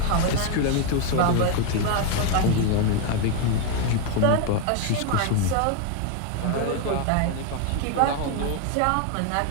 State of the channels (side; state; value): both; different; correlation 0.01